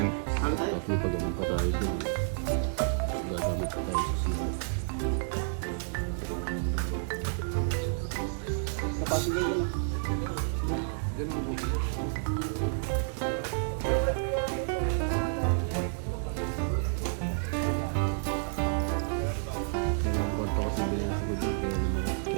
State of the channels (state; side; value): silent; left; digital silence